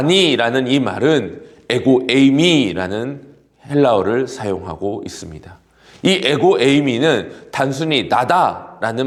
이 말은 에고 에이미라는 헬라어를 사용하고 있습니다. 이 에고 에이미는 단순히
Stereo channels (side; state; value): both; identical; correlation 1.00